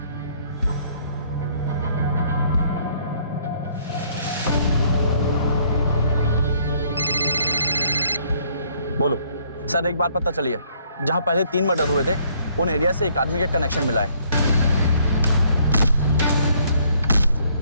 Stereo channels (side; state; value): both; inverted; correlation -0.65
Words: बोलो सर, एक बात पता चली है, जहां पहले 3 मर्डर हुए थे उन एरिया से एक आदमी का कनेक्शन मिला है।